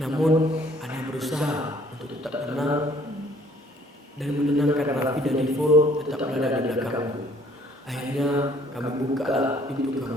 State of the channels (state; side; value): normal; both; correlation 0.59